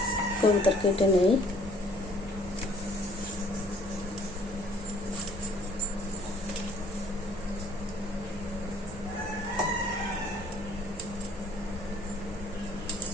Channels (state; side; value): normal; both; correlation 0.58